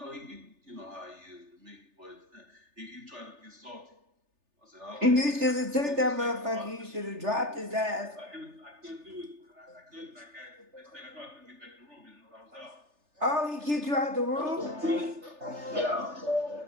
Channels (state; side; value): late; left; 3.3 ms